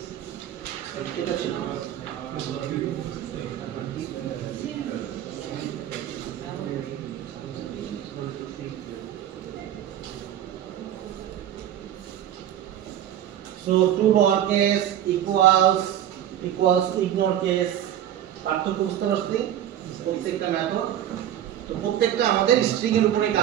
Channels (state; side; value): quieter; left; 11.3 dB